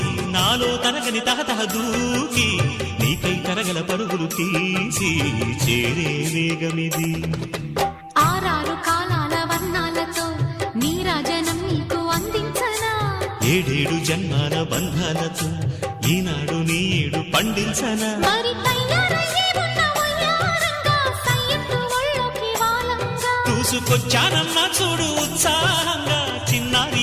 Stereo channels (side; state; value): both; identical; correlation 1.00